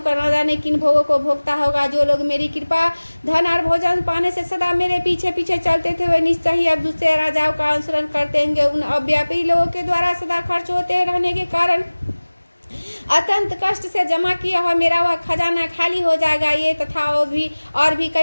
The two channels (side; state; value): both; inverted; correlation -1.00